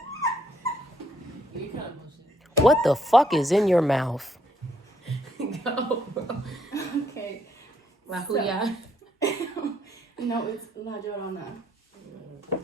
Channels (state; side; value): normal; both; correlation 0.70